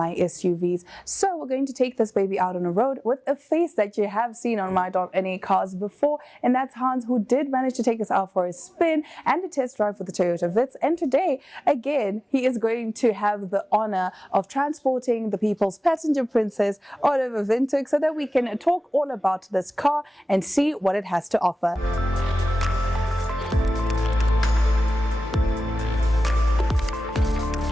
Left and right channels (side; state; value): both; normal; correlation 0.96